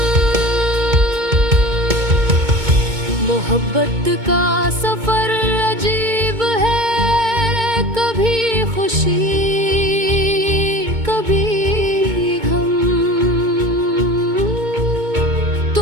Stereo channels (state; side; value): late; left; 2.2 ms